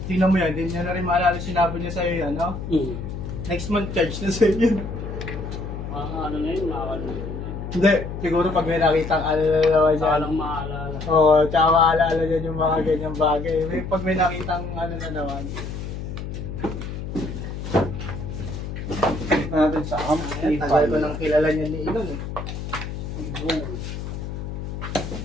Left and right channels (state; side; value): noise; left; hum, 7 dB below the sound